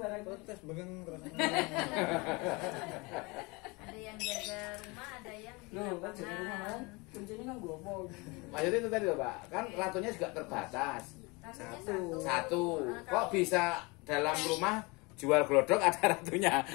Protes begeng terus. Ada yang jaga rumah, ada yang di Loh, kan jaga rumah kan? lapangan. Kuncinya kan gopo. Maksudnya itu tadi loh Pak, kan ratunya juga terbatas. Ratunya Satu. Nah, Kok kalau- bisa dalam rumah jual glodok ada ratunya,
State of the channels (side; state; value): right; quieter; 26.6 dB